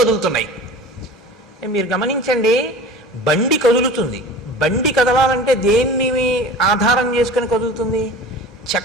మీరు గమనించండి, బండి కదులుతుంది. బండి కదలాలంటే దేన్ని ఆధారం చేసుకుని కదులుతుంది?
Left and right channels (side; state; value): both; normal; correlation 0.39